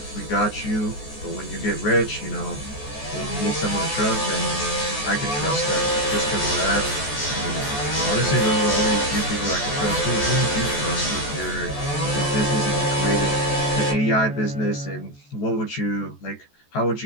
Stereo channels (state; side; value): late; right; 14 ms